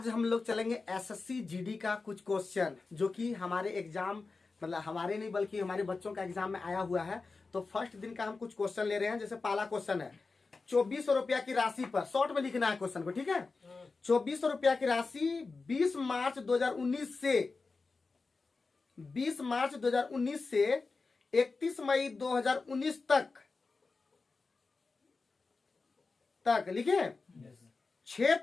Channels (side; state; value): right; quieter; 4.1 dB